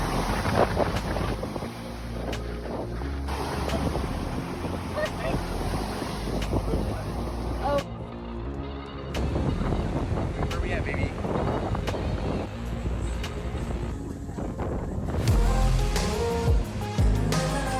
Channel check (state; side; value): identical; both; correlation 1.00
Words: Oh. Where we at, baby?